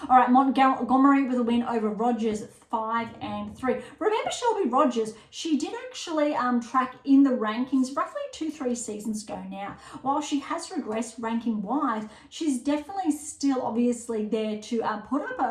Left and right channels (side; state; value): both; identical; correlation 1.00